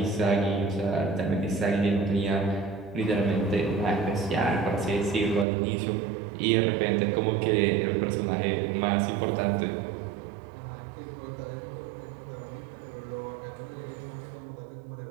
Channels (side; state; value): left; drops out; at 5.5 s